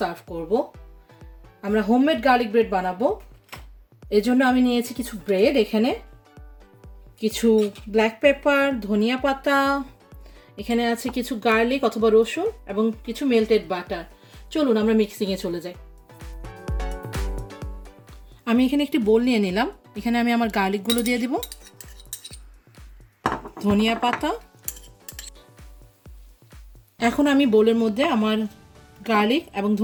করব। আমরা হোমমেড গার্লিক ব্রেড বানাবো। এর জন্য আমি নিয়েছি কিছু ব্রেড, এখানে কিছু ব্ল্যাক পেপার, ধনিয়া পাতা, এখানে আছে কিছু গার্লিক অথবা রসুন এবং কিছু মেল্টেড বাটার। চলুন আমরা মিক্সিংয়ে চলে যাই। আমি এখানে একটি বোল নিয়ে নিলাম। এখানে আমি আমার গার্লিকগুলো দিয়ে দিব, ধনিয়া পাতা। এখন আমি বোলের মধ্যে আমার গার্লিক এবং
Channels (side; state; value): both; identical; correlation 1.00